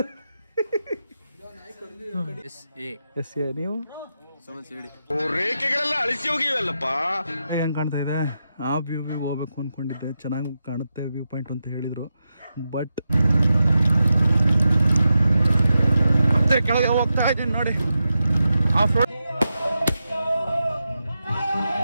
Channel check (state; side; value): inverted; both; correlation -0.89